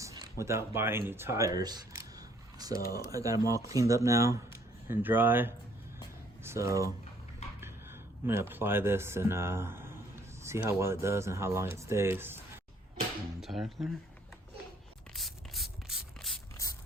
without buying new tires. So I got them all cleaned up now and dry. So I'm gonna apply this and see how well it does and how long it stays. Tire cleaner.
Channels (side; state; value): both; normal; correlation 0.63